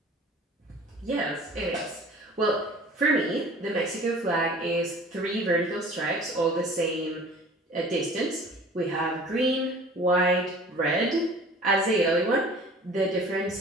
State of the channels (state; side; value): normal; both; correlation 0.46